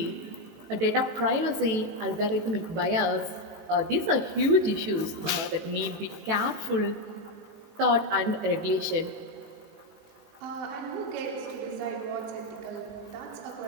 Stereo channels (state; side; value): late; left; 18 ms